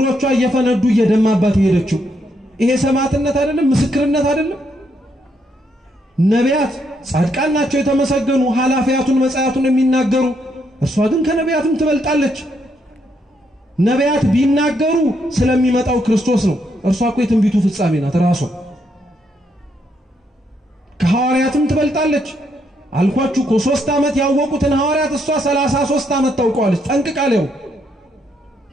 እየፈነዱ እየደማባት ሄደችው። ይሄ ሰማዕትነት አይደለም? ምስክርነት አይደለም? ነቢያት ጻድቃን ናቸው የተመሰገኑ ሐላፊያቱን መጻያቱን የሚናገሩ፣ እርሷ ግን ከነቢያትም ትበልጣለች። ነቢያት ቢናገሩ ስለሚመጣው ክርስቶስ ነው። እርሷ እኮ የትንቢቱ ፍጻሜ ናት ራሷ። ከሐዋርያትም ትበልጣለች። አልኳችሁ እኮ 3 ዓመት ያወቁትን ሐዋርያት እሷ 33 ዓመት ታውቀዋለች ጠንቅቃለው።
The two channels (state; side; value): normal; both; correlation 0.76